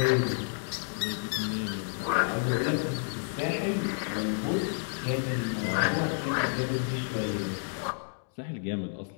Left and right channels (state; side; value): silent; right; 58 dB below the other